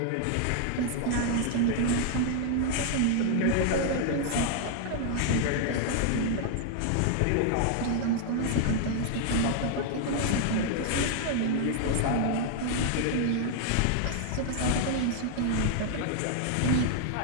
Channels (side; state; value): both; different; correlation 0.00